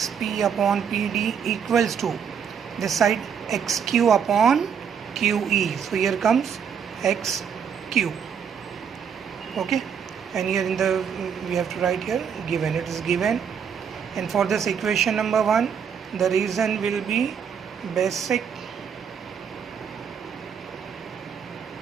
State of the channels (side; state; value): left; quieter; 7.4 dB